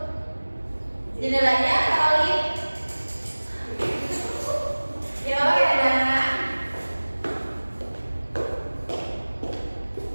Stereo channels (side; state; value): both; inverted; correlation -1.00